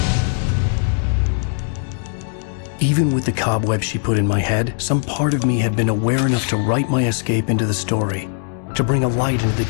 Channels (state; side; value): silent; right; 66 dB below the other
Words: Even with the cobweb she put in my head, some part of me had been aware enough to write my escape into the story, to bring a light into the